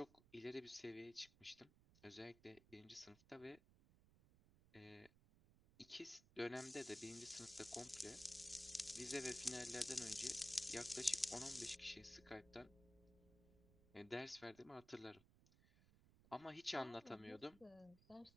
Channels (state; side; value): noise; right; rumble, 24 dB below the sound